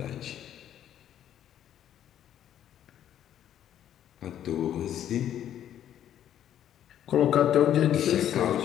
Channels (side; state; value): right; quieter; 10.7 dB